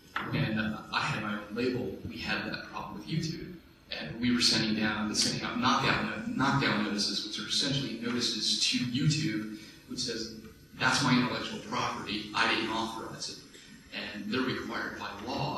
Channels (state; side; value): identical; both; correlation 1.00